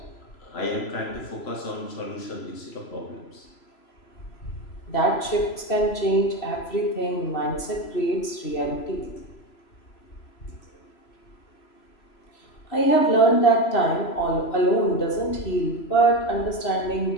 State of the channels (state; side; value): late; right; 3.0 ms